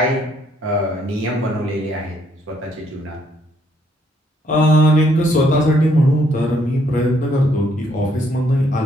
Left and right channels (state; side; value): normal; both; correlation 0.69